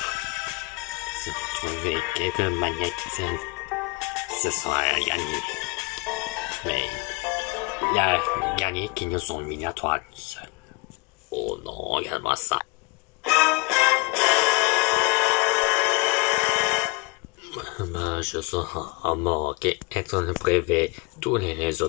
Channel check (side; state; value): right; quieter; 24.6 dB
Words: Si on trouver quelques magnétines, ce sera gagné. Mais il y a gagné qui nous sont mis à toi seul. Oh non, regarde-moi ça. Je serai en manque être le privé. Tous les